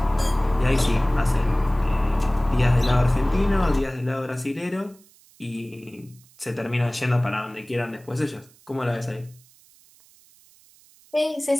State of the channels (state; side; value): noise; right; hiss, 28 dB below the sound